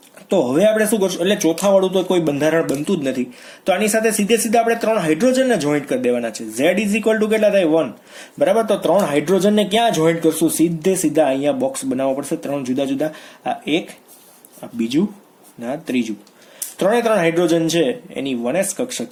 તો હવે આપણે શું કરશું? એટલે ચોથા વાળું તો કોઈ બંધારણ બનતું જ નથી. તો આની સાથે સીધે આપણે 3 હાઇડ્રોજનને જોઈન્ટ કરી દેવાના છે. Z ઇઝ ઇક્વલ ટુ કેટલા થાય? 1, બરાબર. તો 3 હાઇડ્રોજનને ક્યાં જોઈન્ટ કરશું? સીધા અહીંયા બોક્સ બનાવવો પડશે. 3 જુદા જુદા, આ એક, આ બીજું, ના ત્રીજું. 3 હાઇડ્રોજન છે એની 1s કક્ષક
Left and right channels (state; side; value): identical; both; correlation 1.00